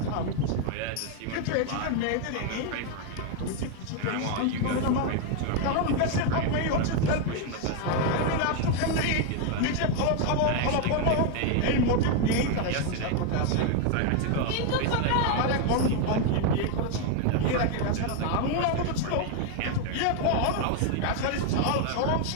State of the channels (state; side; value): different; both; correlation 0.01